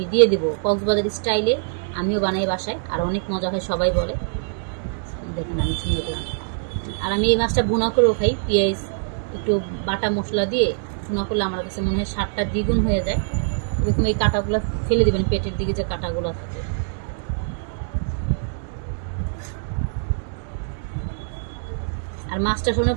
দিয়ে দেবো। কক্সবাজার স্টাইলে আমিও বানাই বাসায়, আর অনেক মজা হয়, সবাই বলে। দেখেন আমি সুন্দর করে, আর আমি এই মাছটা ভুনা করেও খাই, পেঁয়াজ একটু বাটা মশলা দিয়ে ভুনা করলে আমার কাছে মনে হয় স্বাদটা দ্বিগুণ হয়ে যায়। এরকম এই কাঁটাগুলো ফেলে দিবেন, পেটের দিকে যে কাঁটাগুলো থাকে। আর মাছটা শুনে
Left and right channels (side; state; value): left; silent; digital silence